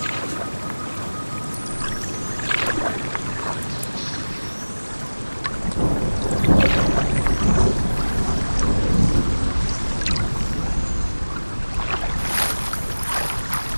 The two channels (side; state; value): both; inverted; correlation -1.00